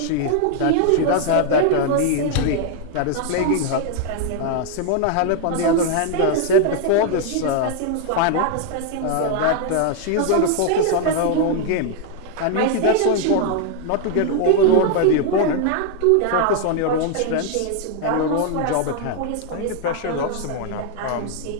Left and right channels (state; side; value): different; both; correlation 0.00